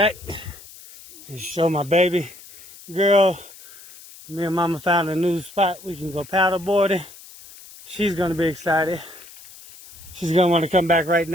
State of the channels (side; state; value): left; noise; hiss, 19 dB below the sound